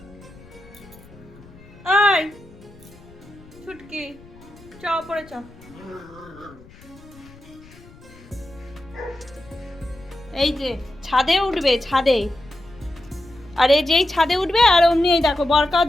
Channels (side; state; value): left; noise; rumble, 23 dB below the sound